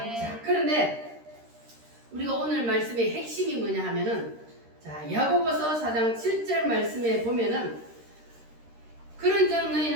자, 그런데 우리가 오늘 말씀의 핵심이 뭐냐 하면은, 자, 야고보서 4장 7절 말씀에 보면은, 그런즉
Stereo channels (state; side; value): late; left; 13 ms